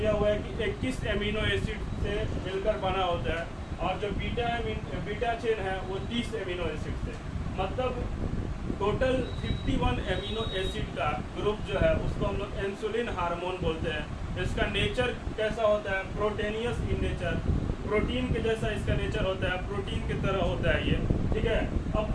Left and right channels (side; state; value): both; identical; correlation 1.00